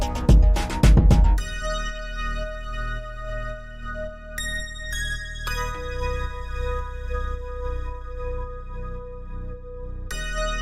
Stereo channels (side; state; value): both; identical; correlation 1.00